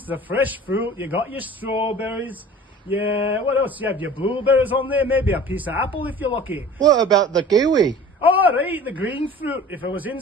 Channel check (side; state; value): both; normal; correlation 0.43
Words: the fresh fruit, you got your strawberries. Yeah, what else? You have your blueberries on there, maybe a piece of apple if you're lucky. What about the kiwi? All right, the green fruit. If it was in